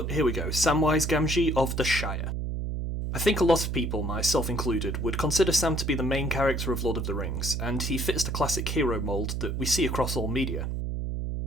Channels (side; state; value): right; noise; hum, 2 dB below the sound